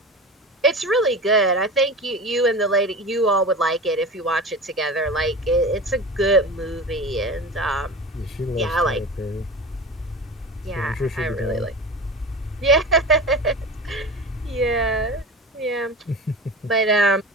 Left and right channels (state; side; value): normal; both; correlation 0.31